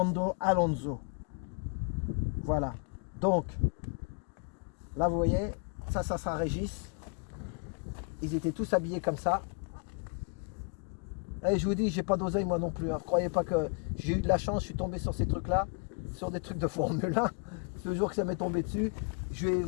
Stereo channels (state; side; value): quieter; right; 37.8 dB